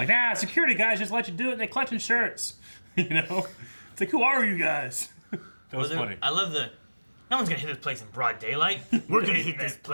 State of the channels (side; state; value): both; inverted; correlation -1.00